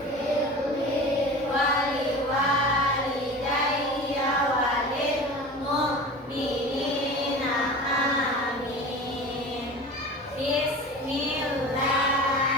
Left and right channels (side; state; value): both; normal; correlation 0.35